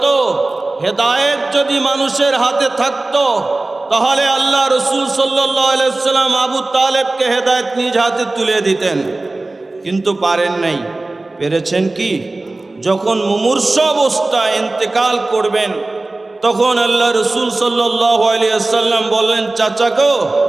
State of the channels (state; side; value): quieter; left; 3.0 dB